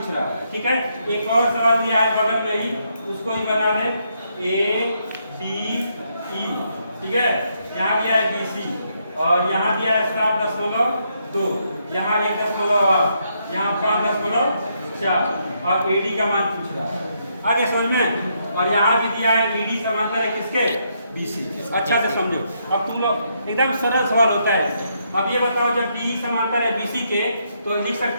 रहा है, ठीक है। एक और सवाल दिया है बगल में ही, उसको ही बना ले, ADE, ठीक है। यहाँ दिया है BC और यहाँ दिया है 7.2, यहाँ 1.8, यहाँ 5.4 और AD का मान पूछ रहा है। आगे समझ में? और यहाँ भी दिया है BD समांतर है किसके? BC। अच्छा से समझो, अब तुम लोग एकदम सरल सवाल होता है। अब ये बताओ, जब DE समांतर है BC के तो लिख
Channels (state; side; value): inverted; both; correlation -0.76